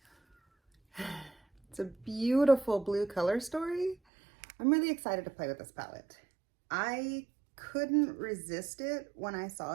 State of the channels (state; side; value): drops out; left; at 4.0 s